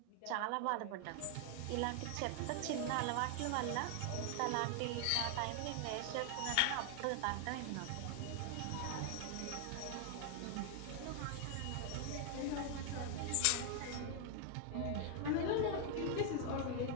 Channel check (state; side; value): different; both; correlation 0.00